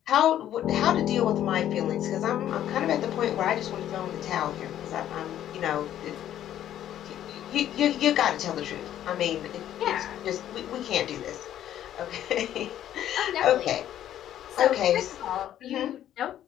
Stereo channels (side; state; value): right; quieter; 11.5 dB